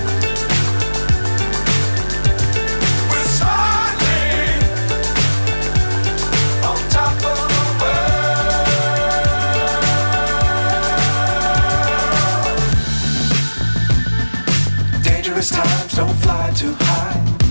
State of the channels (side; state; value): both; inverted; correlation -1.00